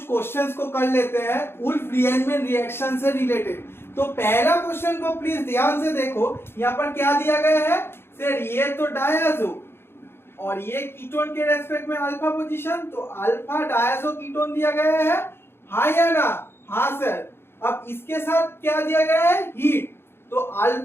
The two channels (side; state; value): right; late; 0.11 ms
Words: क्वेश्चंस को कर लेते हैं वुल्फ रीअरेंजमेंट रिएक्शन से रिलेटेड। तो पहला क्वेश्चन को प्लीज ध्यान से देखो, यहाँ पर क्या दिया गया है सर, ये तो डायज़ो और ये कीटोन के रेस्पेक्ट में अल्फा पोजीशन, तो अल्फा डायज़ो कीटोन दिया गया है, हाँ या ना? हाँ सर। अब इसके साथ क्या दिया गया है, हीट, तो